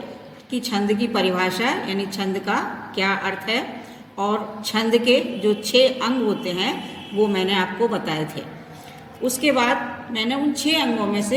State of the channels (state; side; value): identical; both; correlation 1.00